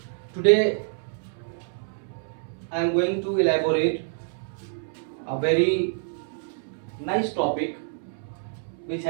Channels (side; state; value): left; silent; 60 dB below the other